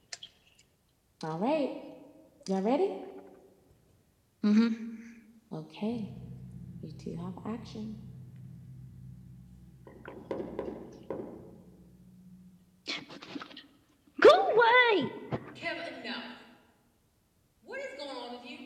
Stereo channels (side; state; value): both; identical; correlation 1.00